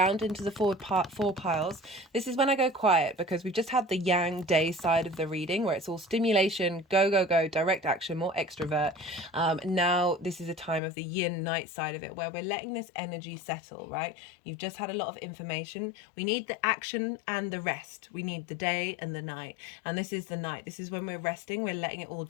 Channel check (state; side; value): drops out; right; at 10.8 s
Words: into the four piles. This is when I go quiet, because we've just had the yang day side of the reading where it's all stimulation, go, direct action, more extrovert. Now this is a time of the yin night side of it, where we're letting this energy settle, right? You've just had a lot of information. We need the action and the rest. We need the day and the night. And this is the night. This is when we're resting. We're letting it all